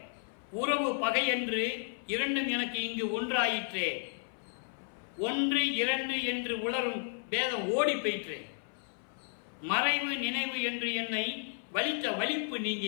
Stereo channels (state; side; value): silent; right; 56 dB below the other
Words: உறவு பகை என்று இரண்டும் எனக்கு இங்கு ஒன்றாயிற்றே, 1 2 என்று உளரும் பேதம் ஓடி போயிற்றே, மறைவு நினைவு என்று என்னை வலித்த வலிப்பு